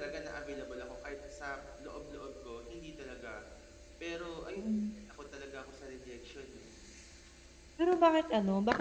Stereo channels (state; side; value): identical; both; correlation 1.00